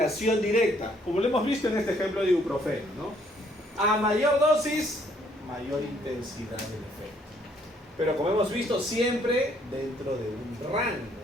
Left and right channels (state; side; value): normal; both; correlation 0.66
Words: directa, como lo hemos visto en este ejemplo de ibuprofeno, ¿no? A mayor dosis, mayor intensidad del efecto. Pero como hemos visto, siempre dentro de un